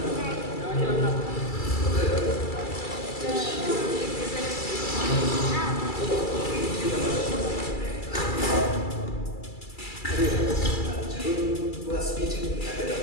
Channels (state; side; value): late; right; 2.3 ms